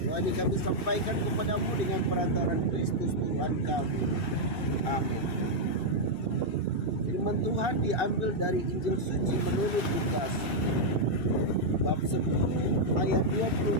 Doa ini kami sampaikan kepadamu dengan perantaran Kristus Tuhan kami. Amin. Firman Tuhan diambil dari Injil Suci menurut Lukas, bab 10 ayat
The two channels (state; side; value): late; right; 2.7 ms